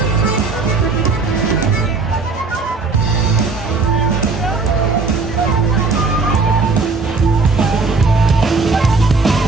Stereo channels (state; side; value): quieter; left; 4.1 dB